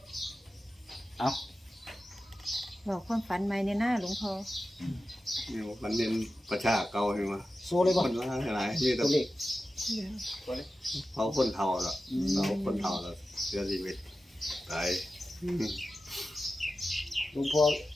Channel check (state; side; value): normal; both; correlation 0.93